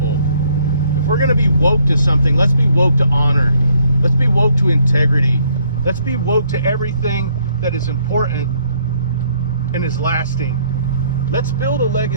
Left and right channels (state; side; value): inverted; both; correlation -0.67